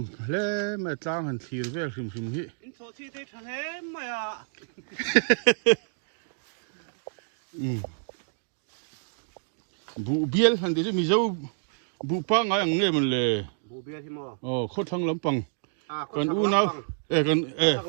lẽ mà trang hành thìr về phim hi in số chi thì thằng em mà bu biel han de mi zo bu pa nga yang nge man le bố bia thì mà kho thang lam pang có kan sạc u lắm na bằng. kan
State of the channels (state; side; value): silent; left; digital silence